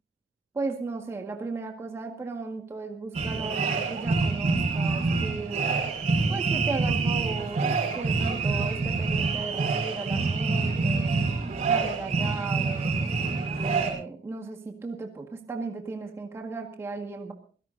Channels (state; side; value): quieter; left; 3.7 dB